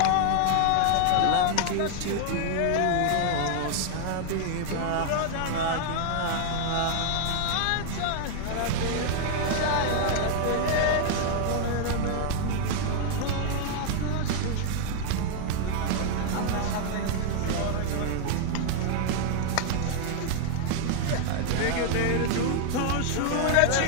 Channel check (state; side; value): different; both; correlation 0.00